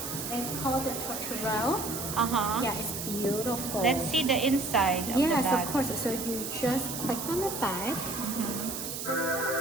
It's called the Tote. Yeah, it's beautiful. Let's see the inside of the bag. Yes, of course. So you just click on the bag.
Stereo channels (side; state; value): right; noise; hiss, 6 dB below the sound